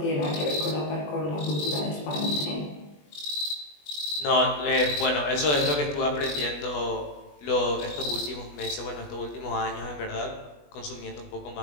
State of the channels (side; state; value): right; late; 20 ms